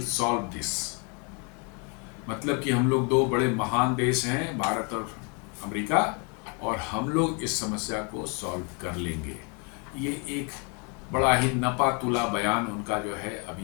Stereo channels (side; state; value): right; quieter; 34.4 dB